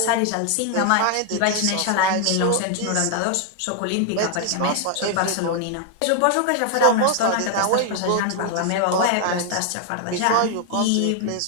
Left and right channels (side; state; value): both; different; correlation 0.00